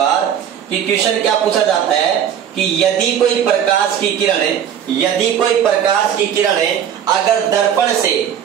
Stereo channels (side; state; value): left; quieter; 9.1 dB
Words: कि क्वेश्चन क्या पूछा जाता है कि यदि कोई प्रकाश की किरण अगर